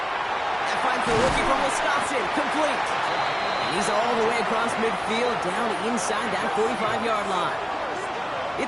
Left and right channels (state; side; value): identical; both; correlation 1.00